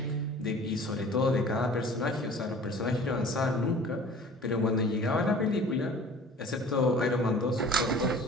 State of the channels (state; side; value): normal; both; correlation 0.46